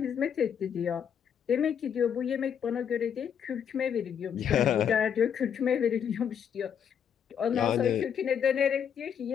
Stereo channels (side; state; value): right; quieter; 8.1 dB